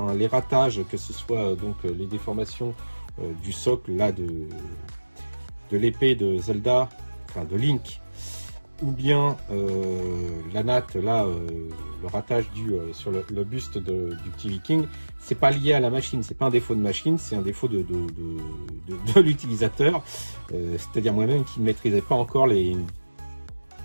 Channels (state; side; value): inverted; both; correlation -1.00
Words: Les ratages, que ce soit donc les déformations du socle là de l'épée de Zelda, enfin de Link, ou bien la natte là, le ratage sur le buste du petit viking, c'est pas lié à la machine, c'est pas un défaut de machine, c'est un défaut de l'utilisateur, c'est-à-dire moi-même qui ne maîtrisais pas encore les